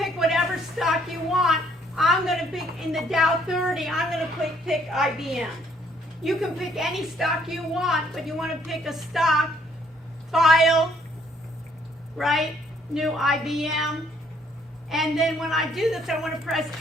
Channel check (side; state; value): both; normal; correlation 0.65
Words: whatever stock you want. I'm going to pick in the Dow 30, I'm going to pick IBM. You can pick any stock you want, but you want to pick a stock, File, right, New IBM. And then when I do this, I want to press